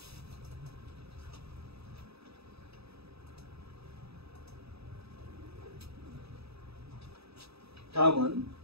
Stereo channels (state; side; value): late; left; 0.78 ms